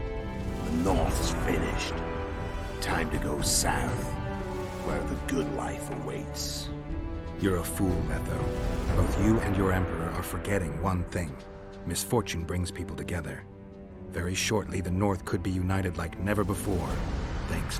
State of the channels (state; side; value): identical; both; correlation 1.00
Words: North's finished. Time to go south, where the good life awaits. You're a fool, Letho. Both you and your Emperor are forgetting one thing. Misfortune brings people together. Very shortly, the North could be united like never before, thanks